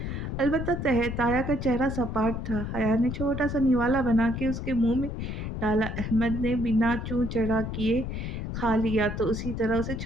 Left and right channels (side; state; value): left; noise; rumble, 5 dB below the sound